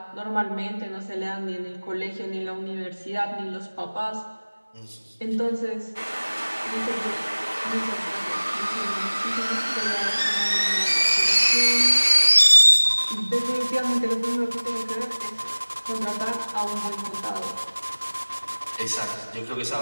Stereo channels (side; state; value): both; inverted; correlation -1.00